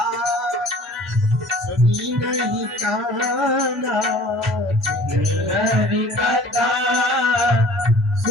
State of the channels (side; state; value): both; normal; correlation 0.50